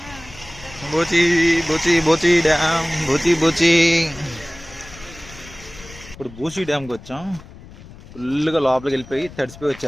బూచి బూచి బూచి డ్యామ్ బూచి. ఇప్పుడు బూచి డ్యామ్కి వచ్చాం. ఫుల్గా లోపలికి వెళ్ళిపోయి తడిసిపోయి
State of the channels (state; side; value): noise; left; rumble, 18 dB below the sound